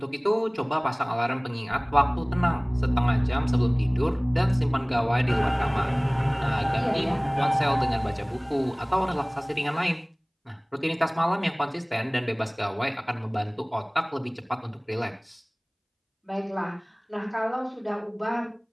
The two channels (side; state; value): both; identical; correlation 1.00